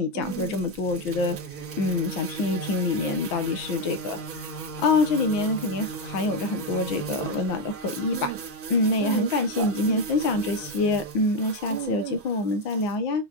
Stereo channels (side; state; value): both; normal; correlation 0.07